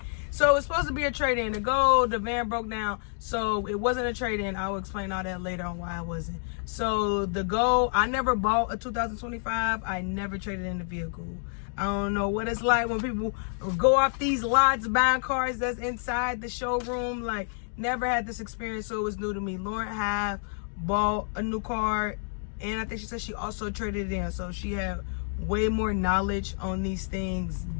So it's supposed to be a trade-in. The van broke down, so it wasn't a trade-in. I will explain all that later on why I wasn't. So I never bought a 2025. I never traded in the vehicle. I don't know what it's like when people go off these lots buying cars that's inside the showroom. Like, never had this experience, so it was new to me. Lauren have bought a new car, and I think she said she also traded it in. So she had way more knowledge on these things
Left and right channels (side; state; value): right; silent; 59 dB below the other